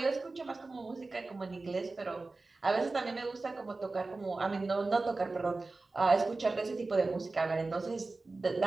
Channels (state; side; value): quieter; left; 3.5 dB